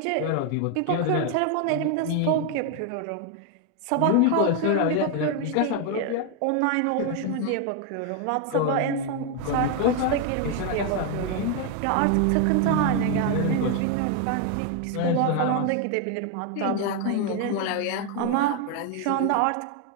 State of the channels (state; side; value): different; both; correlation 0.01